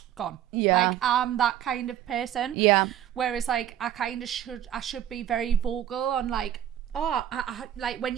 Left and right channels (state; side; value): quieter; left; 11.2 dB